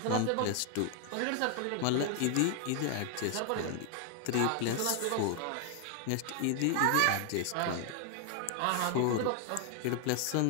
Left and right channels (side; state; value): both; different; correlation 0.00